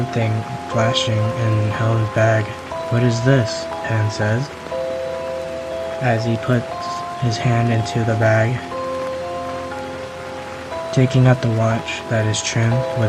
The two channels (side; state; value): both; identical; correlation 1.00